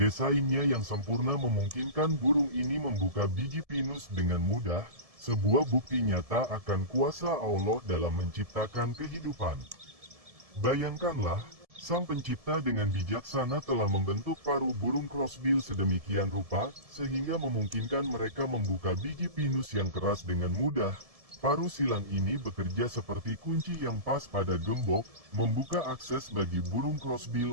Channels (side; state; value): left; late; 1.7 ms